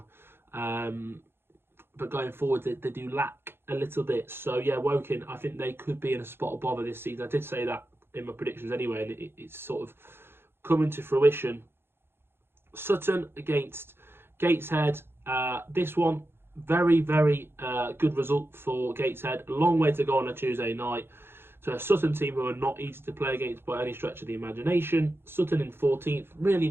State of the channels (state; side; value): late; left; 0.11 ms